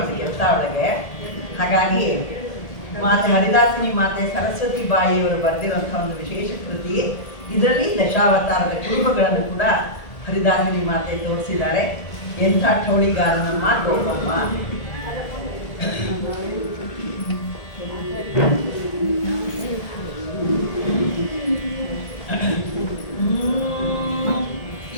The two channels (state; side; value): late; right; 1.8 ms